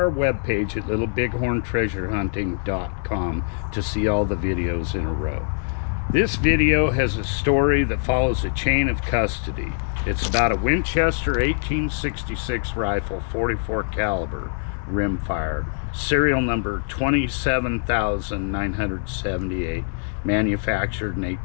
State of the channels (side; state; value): right; silent; 63 dB below the other